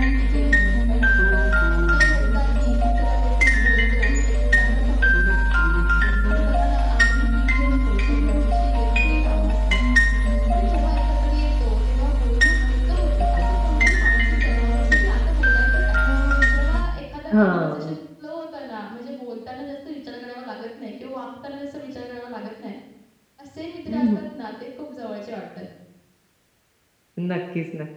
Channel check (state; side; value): identical; both; correlation 1.00